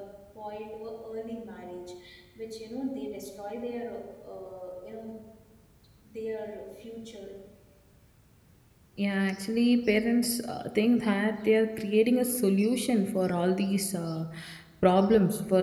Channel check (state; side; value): identical; both; correlation 1.00